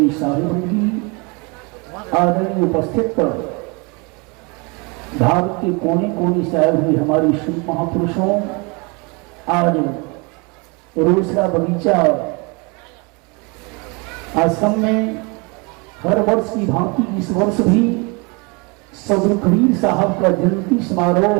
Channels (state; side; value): quieter; left; 29.9 dB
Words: साहिब की आदरणीय उपस्थित भारत के कोने कोने से आए हुए हमारे शुभ महापुरुषों, आज रोसड़ा बगीचा आश्रम में हर वर्ष की भांति इस वर्ष भी सदगुरु कबीर साहब का जयंती समारोह